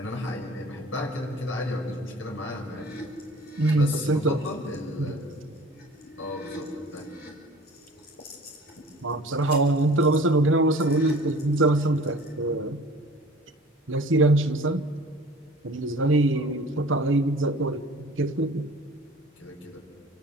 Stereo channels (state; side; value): normal; both; correlation 0.45